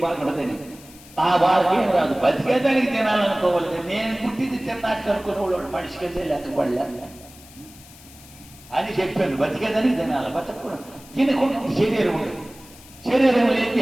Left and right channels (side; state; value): left; noise; hiss, 21 dB below the sound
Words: బాగుంటుందని ఆ వాళ్ళకి ఏం రాదు. బతికేదానికి తినాలనుకోవాలి. నేను పుట్టింది తిన్నాక అనుకునేవాడు మనిషికి వెళ్ళే లెక్కపడలే అని చెప్పాను. బతికేదానికి తినాలి, బతకూడదు. తినకుండా శరీరం ఉండదు. శరీరం లేని